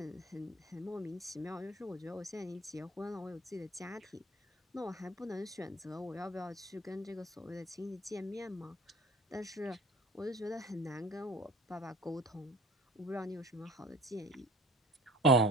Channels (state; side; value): normal; both; correlation 0.44